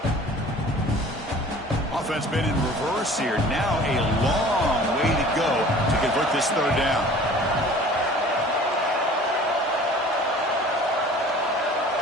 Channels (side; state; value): both; normal; correlation 0.46